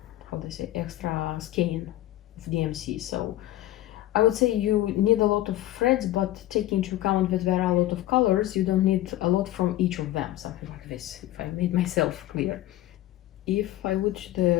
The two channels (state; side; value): quieter; right; 15.0 dB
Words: do I say, extra skein of DMC. So I would say you need a lot of threads, but take into account that there are a lot of colors, you don't need a lot from each of them, something like this, if I made myself clear. If I would